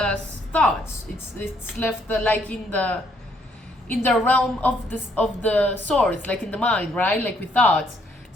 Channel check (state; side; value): normal; both; correlation 0.69